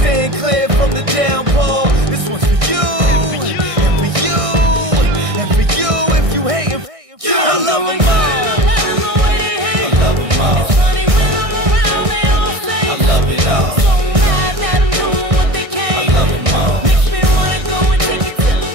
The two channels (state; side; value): late; left; 1.6 ms